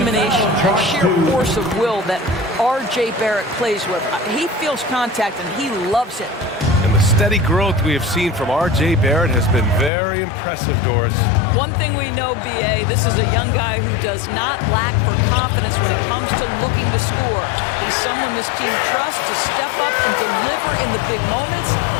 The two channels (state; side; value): drops out; right; at 9.9 s